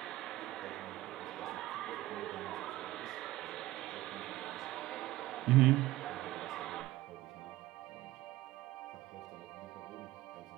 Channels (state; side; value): quieter; left; 16.9 dB